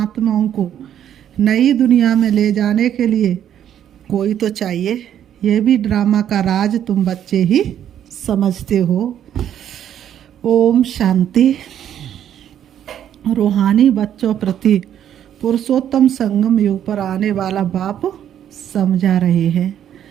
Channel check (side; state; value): left; quieter; 10.1 dB